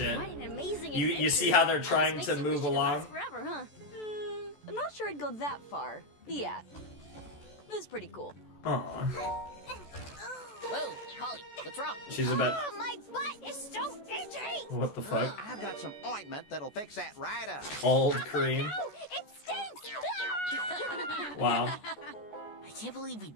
What an amazing You adventure. see how they're trying Almost to makes you move wish it along? lasts forever, huh? I'm not sure I'd go that far. Yeah. It was pretty cool. Aw. Whoa, Holly, what's wrong? She's about... Oh, my butt is so itchy! What the fuck? I've got some ointment that'll fix that right up. Old cream. No, it stinks! Wow. I can't believe we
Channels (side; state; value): right; late; 14 ms